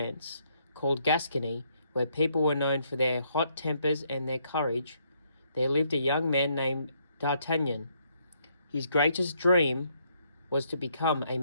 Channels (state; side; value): inverted; both; correlation -0.71